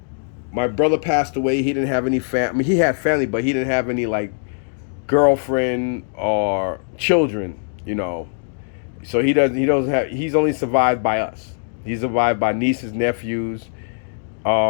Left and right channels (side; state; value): right; silent; digital silence